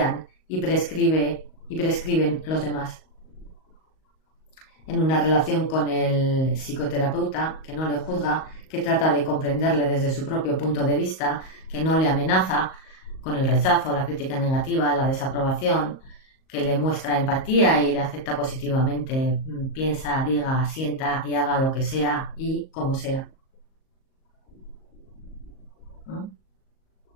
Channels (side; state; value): right; late; 38 ms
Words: y prescriben los demás. En una relación con el psicoterapeuta, que no le juzga, que trata de comprenderle desde su propio punto de vista, que no le amenaza, con el rechazo, la crítica negativa, la desaprobación, que le muestra empatía y le acepta positivamente, piensa, diga, sienta y haga lo que sea y como sea. ¿No?